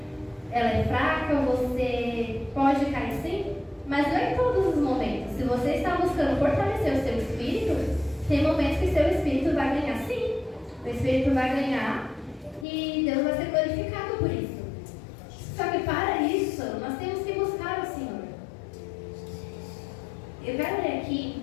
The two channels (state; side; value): drops out; right; at 12.7 s